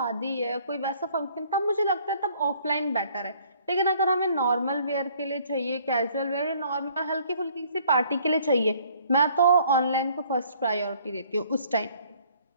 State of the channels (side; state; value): both; inverted; correlation -0.60